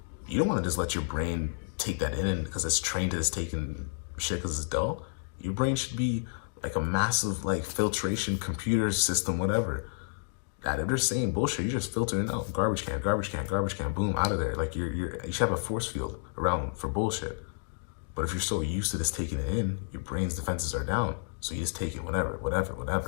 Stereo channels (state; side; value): silent; right; digital silence